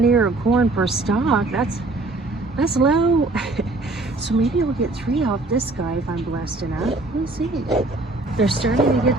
ear of corn per stalk. That's low. So maybe I'll get 3 off this guy if I'm blessed enough. We'll see. They're starting to get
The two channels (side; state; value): left; quieter; 3.0 dB